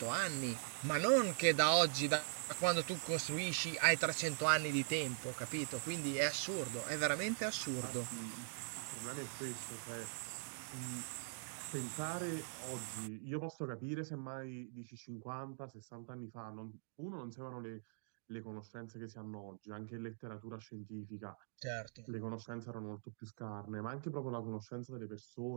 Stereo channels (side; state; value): left; silent; digital silence